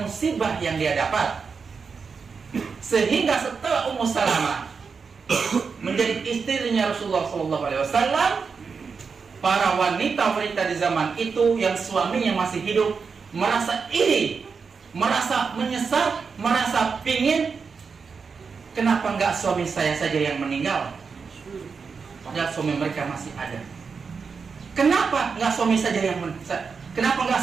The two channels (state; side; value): quieter; left; 5.4 dB